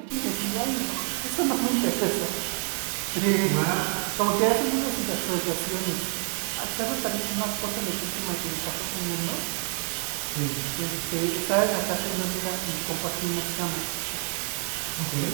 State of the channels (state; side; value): quieter; left; 39.7 dB